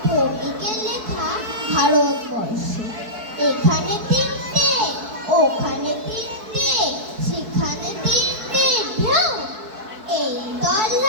ভৌমিকের লেখা ভারতবর্ষ। এখানে তিনটে, ওখানে তিনটে, সেখানে তিনটে ঢেউ। এই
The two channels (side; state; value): left; late; 4.6 ms